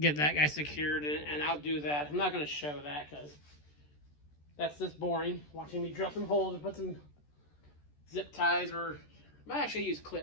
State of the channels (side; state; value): right; late; 14 ms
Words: that guy secured, and I'll do that. I'm not gonna show that because that's just boring, watching me drill some holes and put some zip ties, or I might actually use